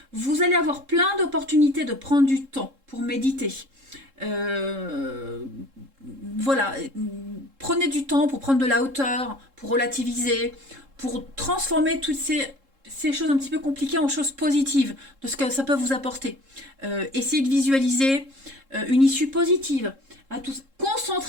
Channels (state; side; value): late; left; 3.7 ms